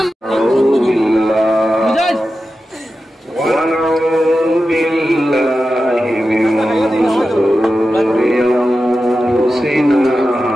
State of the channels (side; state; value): both; normal; correlation 0.92